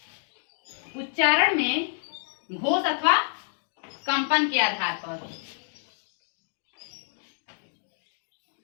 उच्चारण में घोष अथवा कंपन के आधार पर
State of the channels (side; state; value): right; silent; digital silence